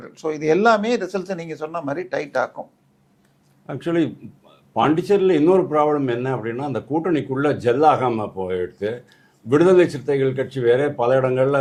ஸோ இது எல்லாமே ரிசல்ட்ஸை நீங்கள் சொன்ன மாதிரி டைட் ஆக்கும். ஆக்சுவலி பாண்டிச்சேரியில் இன்னொரு ப்ராப்ளம் என்ன அப்படின்னா, அந்த கூட்டணிக்குள்ளே ஜெல்லாகாமல் போயிடுது. விடுதலை சிறுத்தைகள் கட்சி வேற பல இடங்களில்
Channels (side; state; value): both; identical; correlation 1.00